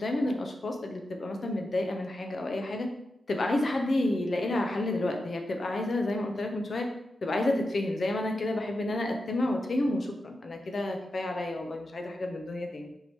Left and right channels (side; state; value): both; normal; correlation 0.89